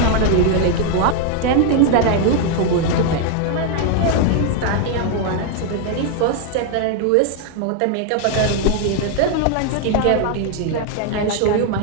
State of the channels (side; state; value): both; different; correlation 0.00